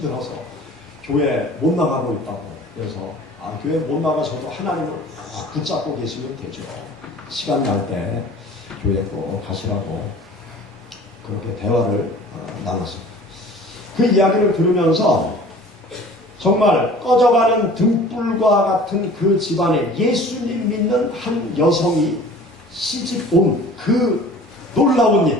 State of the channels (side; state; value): both; normal; correlation 0.45